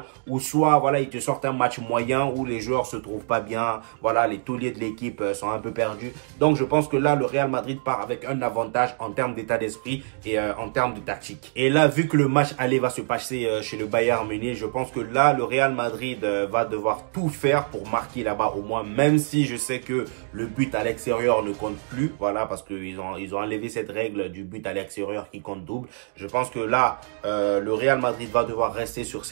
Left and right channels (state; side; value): silent; left; digital silence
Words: ou soit voilà, ils te sortent un match moyen où les joueurs se trouvent pas bien, voilà, les tauliers de l'équipe sont un peu perdus. Donc je pense que là, le Real Madrid part avec un avantage en termes d'état d'esprit et en termes de tactique. Et là, vu que le match aller va se passer chez le Bayern Munich, je pense que là, le Real Madrid va devoir tout faire pour marquer là-bas au moins, même si je sais que le but à l'extérieur ne compte plus, voilà, parce qu'ils ont enlevé cette règle du but à l'extérieur qui compte double. Je pense que là, le Real Madrid va devoir rester sur